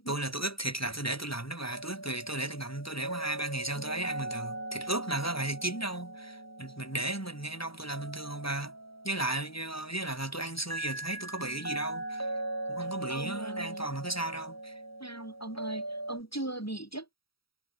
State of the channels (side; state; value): right; late; 0.75 ms